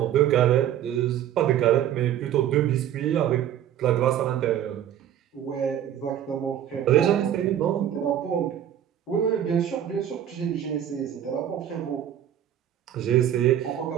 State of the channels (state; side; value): quieter; left; 10.5 dB